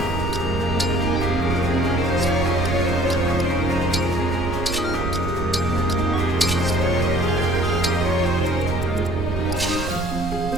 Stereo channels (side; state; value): right; noise; rumble, 6 dB below the sound